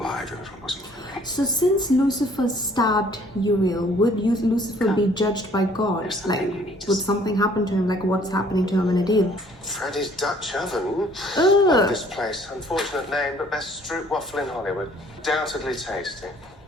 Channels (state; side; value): normal; both; correlation 0.58